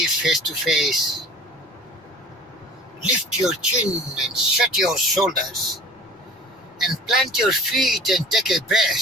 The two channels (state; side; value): normal; both; correlation 0.43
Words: face to face. Lift your chin and shut your shoulders and plant your feet and take a